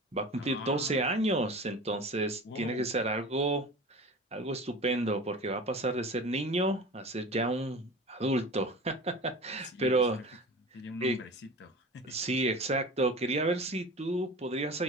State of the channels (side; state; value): both; normal; correlation 0.36